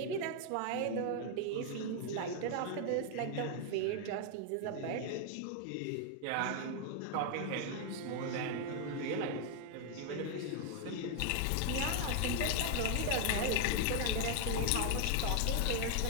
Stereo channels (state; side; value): different; both; correlation 0.01